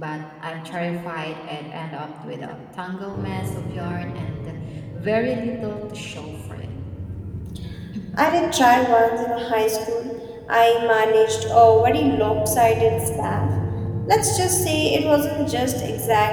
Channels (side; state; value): both; identical; correlation 1.00